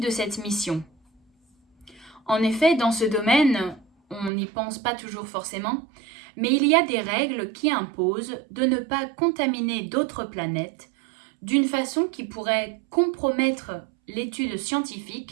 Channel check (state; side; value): drops out; left; at 4.3 s